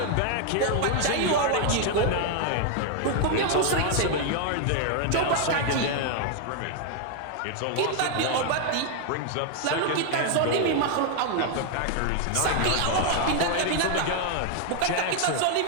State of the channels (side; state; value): both; different; correlation 0.00